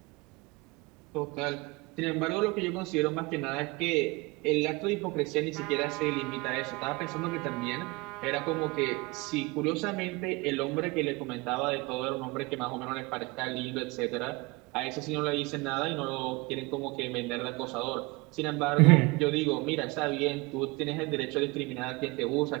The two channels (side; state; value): left; quieter; 25.3 dB